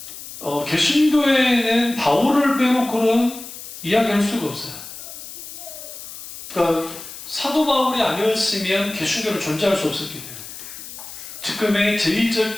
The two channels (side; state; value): left; noise; hiss, 13 dB below the sound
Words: 개신교회는 바울을 빼놓고는 이야기할 수가 없어요. 그러니까 사도 바울이 아니었으면 개신교를 존재할 수 없었기 때문에 지금의